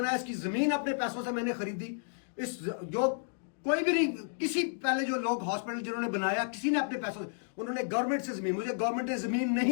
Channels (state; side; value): silent; right; digital silence